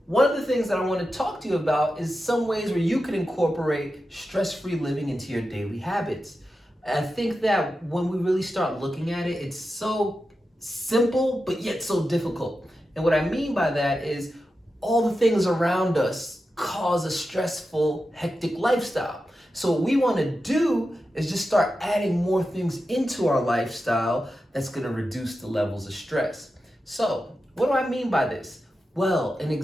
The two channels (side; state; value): both; normal; correlation 0.91